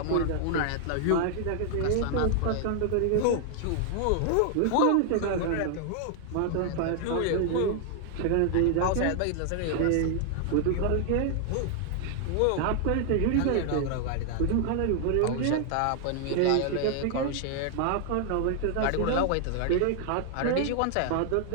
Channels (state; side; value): different; both; correlation 0.00